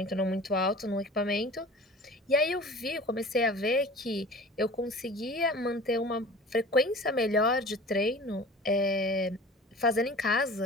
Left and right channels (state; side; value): normal; both; correlation 0.41